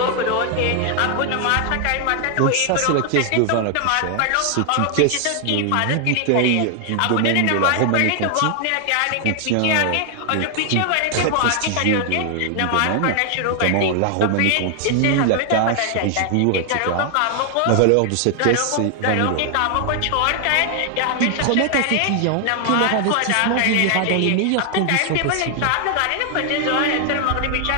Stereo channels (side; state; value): both; different; correlation 0.00